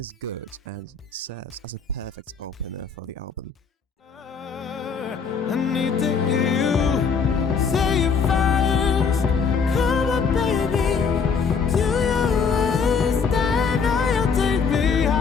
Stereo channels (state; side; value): quieter; right; 5.6 dB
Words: good and serves as a perfect opener for the album. I need to hear you say it first. Come on, baby, do your worst. I know you'll take me